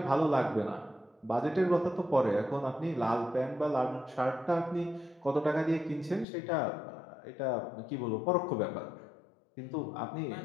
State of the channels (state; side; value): drops out; right; at 6.2 s